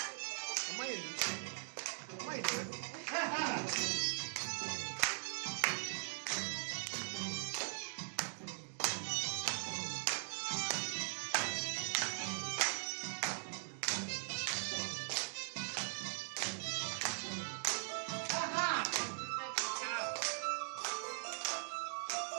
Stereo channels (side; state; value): left; silent; digital silence